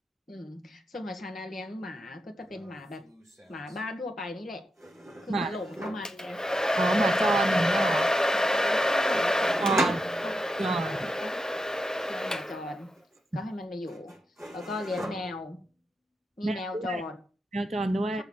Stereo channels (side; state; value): both; normal; correlation 0.86